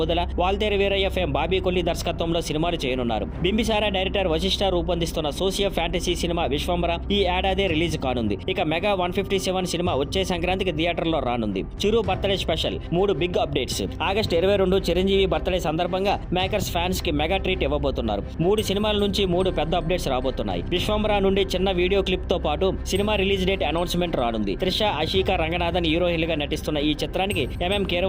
వాల్తేరు వీరయ్య ఫేమ్ బాబీ కొల్లి దర్శకత్వంలో సినిమాలు చేయనున్నారు. బింబిసారా డైరెక్టర్ వశిష్ఠ రూపొందిస్తున్న సోషియో ఫ్యాంటసీ సినిమా విశ్వంబర ఈ ఏడాది రిలీజ్ కానుంది. ఇక మెగా 157 సినిమా వచ్చే సంక్రాంతికి థియేటర్లో రానుంది. Chiru birthday special 3 big updates. August 22 Chiranjeevi birthday సందర్భంగా మేకర్స్ ఫ్యాన్స్ కి మెగా ట్రీట్ ఇవ్వబోతున్నారు. 3 సినిమాల నుంచి 3 పెద్ద అప్డేట్స్ రాబోతున్నాయి. విశ్వంబర నుండి చిన్న వీడియో క్లిప్ తో పాటు సినిమా రిలీజ్ డేట్ అనౌన్స్మెంట్ రానుంది. త్రిష, ఆషికా రంగనాథన్ హీరోయిన్లుగా నటిస్తున్న ఈ చిత్రానికి ఎంఎం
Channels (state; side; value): identical; both; correlation 1.00